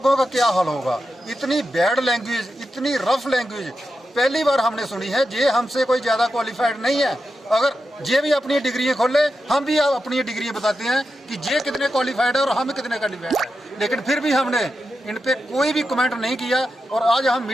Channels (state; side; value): normal; both; correlation 0.89